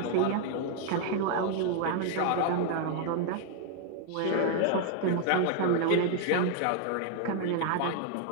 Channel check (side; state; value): both; different; correlation 0.00